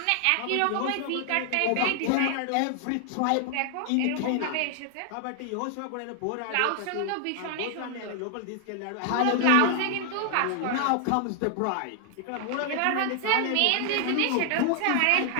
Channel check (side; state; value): both; different; correlation 0.00